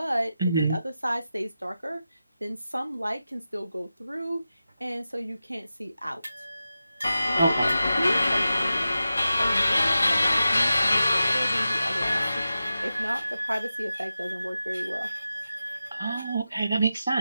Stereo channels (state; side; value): inverted; both; correlation -0.92